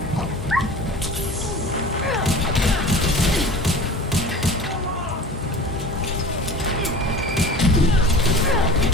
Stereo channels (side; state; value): both; normal; correlation 0.38